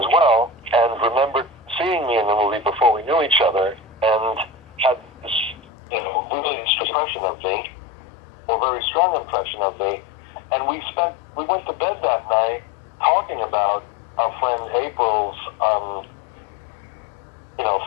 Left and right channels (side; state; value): right; drops out; at 5.6 s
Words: well, and remembered seeing me in the movie before we knew each other, and had this, really impression of me, or very strong impression of me. And we went to bed that night talking about our friend April's,